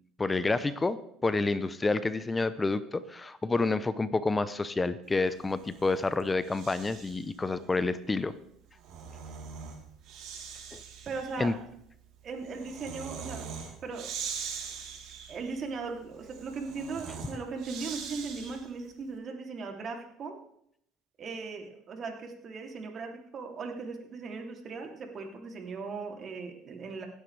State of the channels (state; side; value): normal; both; correlation 0.85